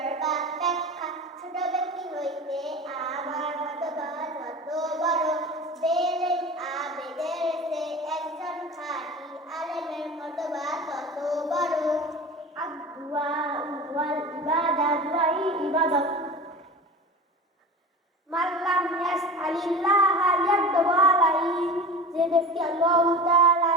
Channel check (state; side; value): normal; both; correlation 0.33